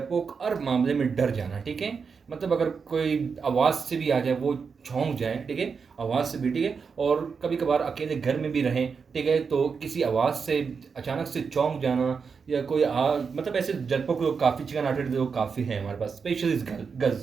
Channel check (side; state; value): left; quieter; 5.6 dB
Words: हर मामले में डर जाना, ठीक है. मतलब अगर कोई आवाज़ से भी आ जाए वो छौंक जाए, ठीक है, आवाज़ से भी, ठीक है. और कभी कभार अकेले घर में भी रहें, ठीक है, तो किसी आवाज़ से अचानक से चौंक जाना, या कोई मतलब ऐसे डरपोक लोग काफ़ी, चिकन हार्टेड लोग काफ़ी हैं हमारे पास, specially